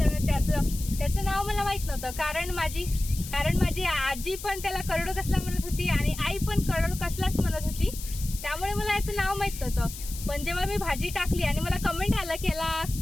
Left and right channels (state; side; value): noise; left; hiss, 11 dB below the sound